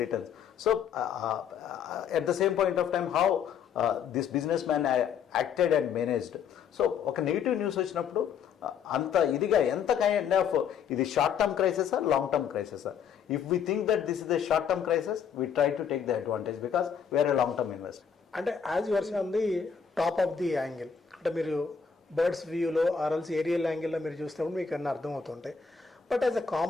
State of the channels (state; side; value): quieter; right; 7.1 dB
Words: returns. So at the same point of time how this business man acted and managed. So ఒక నెగిటివ్ న్యూస్ వచ్చినప్పుడు అంత ఇదిగా ఎంత కైండ్ ఆఫ్ ఇది short term crisis long term crisis. If we think that this is the short term crisis we try to take the advantage because we are a long term investor. అంటే as your on the top of the angle, అంటే మీరు బర్డ్స్ వ్యూలో ఆర్ఎల్స్ ఏరియల్ యాంగిల్లో మీరు చూసినప్పుడు మీకు అన్నీ అర్థమవుతుంటాయి. But as a